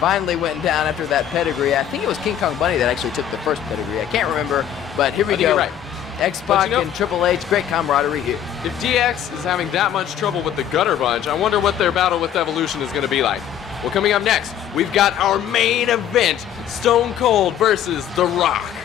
went down after that pedigree. I think it was King Kong Bundy that actually took the first pedigree. I can't remember, but here we I think go. you're right. X-Pac and Triple H, great camaraderie here. If DX is having that much trouble with the Gutter Bunch, I wonder what their battle with Evolution is going to be like. Well, coming up next, we've got our main event, Stone Cold versus The Rock.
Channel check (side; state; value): right; quieter; 10.0 dB